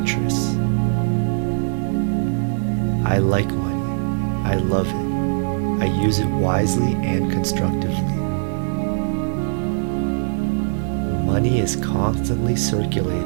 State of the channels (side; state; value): left; silent; digital silence